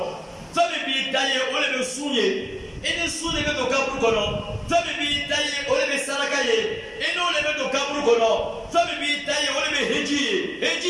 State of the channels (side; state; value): both; identical; correlation 1.00